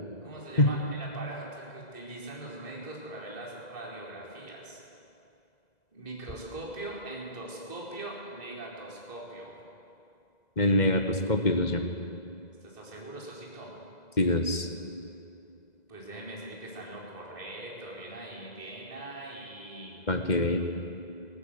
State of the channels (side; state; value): right; late; 2.0 ms